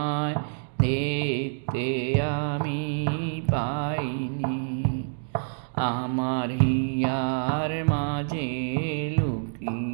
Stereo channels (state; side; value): silent; left; digital silence